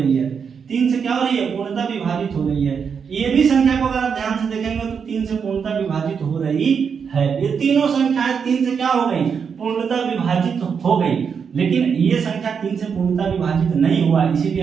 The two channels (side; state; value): left; quieter; 6.5 dB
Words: है, 3 से क्या हो रही है? पूर्णतः विभाजित हो रही है। ये भी संख्या को अगर आप ध्यान से देखेंगे तो 3 से पूर्णतः विभाजित हो रही है। ये तीनों संख्याएं 3 से क्या हो गई? पूर्णतः विभाजित हो गई, लेकिन ये संख्या 3 से पूर्णतः विभाजित नहीं हुआ, इसीलिए